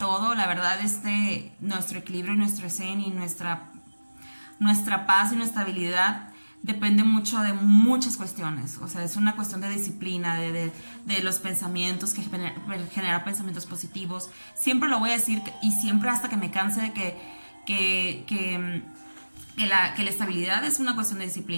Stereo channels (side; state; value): both; inverted; correlation -1.00